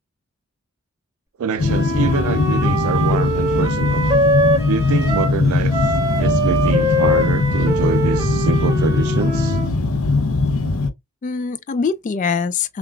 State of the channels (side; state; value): both; normal; correlation 0.50